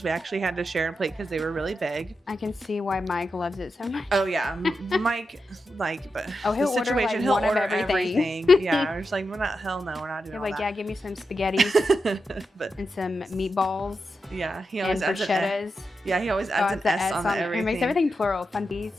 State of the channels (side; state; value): both; normal; correlation 0.88